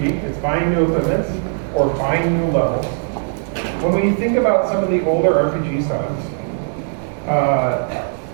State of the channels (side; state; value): left; silent; digital silence